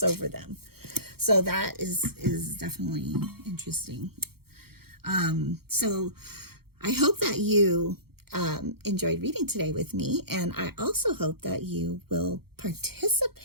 over them. So that is definitely interesting. So I hope that you enjoyed reading today with me. And I also hope that you will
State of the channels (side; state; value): left; late; 0.95 ms